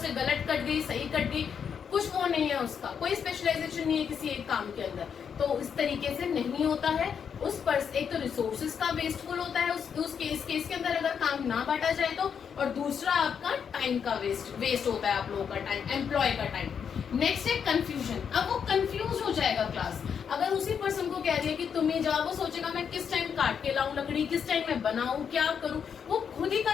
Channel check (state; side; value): quieter; right; 7.2 dB